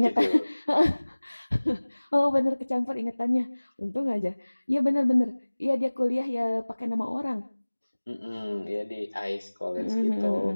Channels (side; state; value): both; inverted; correlation -1.00